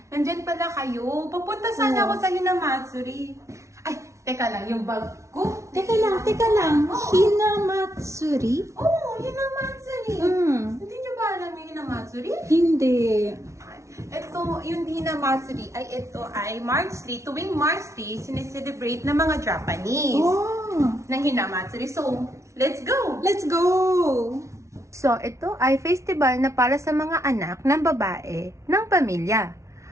andyan pala kayo. Papunta sana ako sa Hinamatsuri. Ay, teka lang, yung bag ko. Teka lang. Hinamatsuri? Oo, Hinamatsuri. Hindi nyo ba alam yung Hinamatsuri? Hindi. Ito, yung Hinamatsuri ito ay March 3. Tuwing March 3, sineselebrate ng mga Japanese ng Hinamatsuri. So, let's go! Let's go! So, ito ay festival na para sa mga anak ng babae ng pamilya.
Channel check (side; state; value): left; late; 0.14 ms